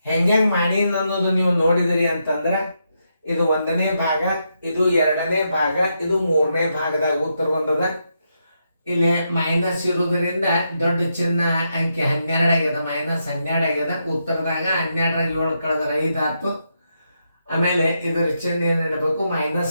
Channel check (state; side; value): inverted; both; correlation -0.82